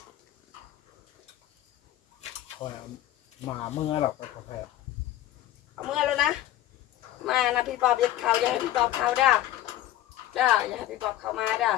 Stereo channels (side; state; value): right; quieter; 13.8 dB